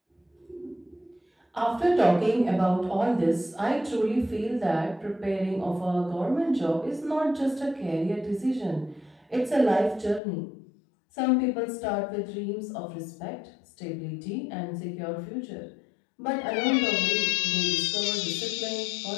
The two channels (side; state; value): right; drops out; at 10.2 s